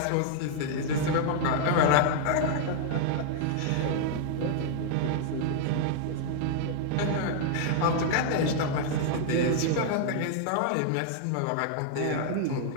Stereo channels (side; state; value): both; different; correlation -0.01